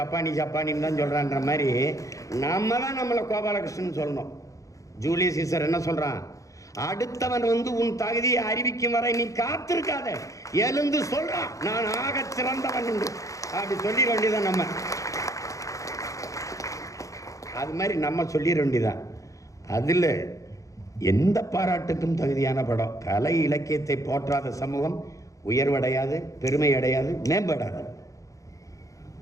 தான் சொல்கிறான்ற மாதிரி நம்ம தான் நம்மளை கோபாலகிருஷ்ணன் சொல்லணும். ஜூலியஸ் சீசர் என்ன சொல்கிறான், அடுத்தவன் வந்து உன் தகுதியை அறிவிக்கும் வரை நீ காத்திருக்காத, எழுந்து சொல்கிறான் நான் ஆக சிறந்தவன் என்று. அப்படி சொல்லிட வேண்டியதான் நம்ம. அது மாதிரி நம்ம சொல்லிட வேண்டியதான். அதில் எந்த பாராட்டுக்கும் தகுதியான படம். கலை இலக்கியத்தை போற்றாத சமூகம் உயர்வடையாது, பெருமை அடையாது, மேம்படாது.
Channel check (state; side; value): late; right; 0.16 ms